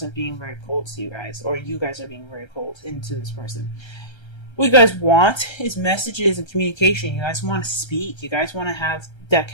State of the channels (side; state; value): right; late; 1.3 ms